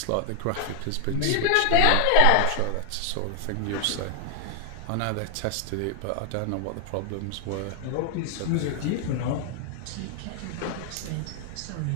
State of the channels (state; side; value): different; both; correlation 0.00